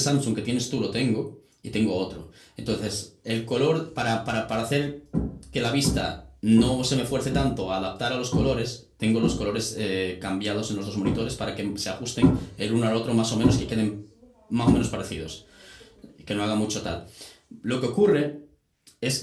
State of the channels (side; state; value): both; identical; correlation 1.00